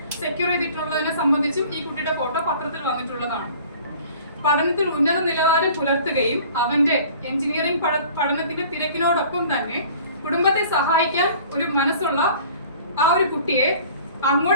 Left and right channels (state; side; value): inverted; both; correlation -0.48